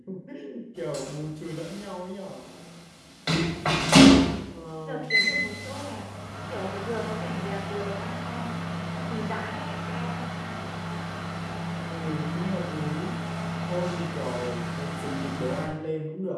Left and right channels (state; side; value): identical; both; correlation 1.00